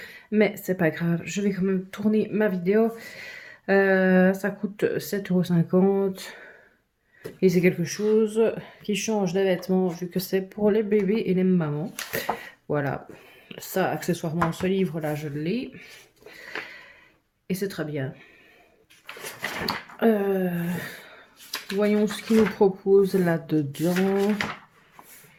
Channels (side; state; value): both; identical; correlation 1.00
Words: mais c'est pas grave, je vais quand même tourner ma vidéo. Ça coûte 7,50 € et c'est quelque chose qui change des vêtements vu que c'est pour les bébés et les mamans. Voilà, ça, accessoirement, ce livre-là, je l'ai et c'est très bien. Voyons ce qu'il nous propose là-dedans.